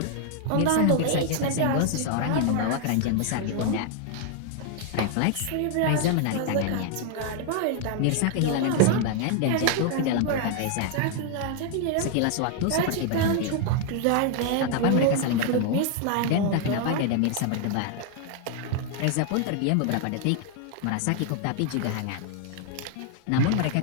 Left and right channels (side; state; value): both; different; correlation 0.00